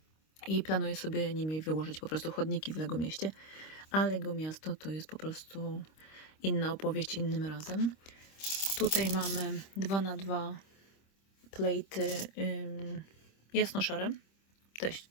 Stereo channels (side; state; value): right; late; 26 ms